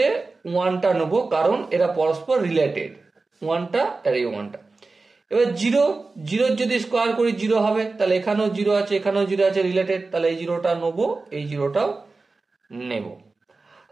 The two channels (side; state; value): left; quieter; 3.7 dB